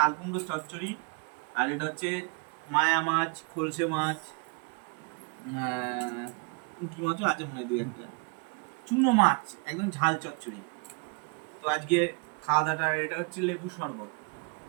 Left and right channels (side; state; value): left; quieter; 33.8 dB